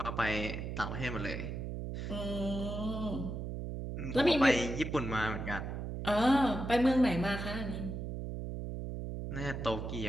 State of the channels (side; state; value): right; noise; hum, 5 dB below the sound